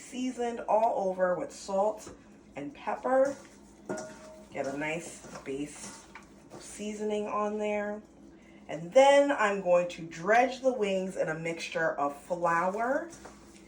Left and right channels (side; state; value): both; identical; correlation 1.00